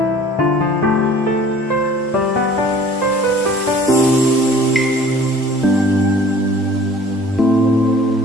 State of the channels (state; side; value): normal; both; correlation 0.50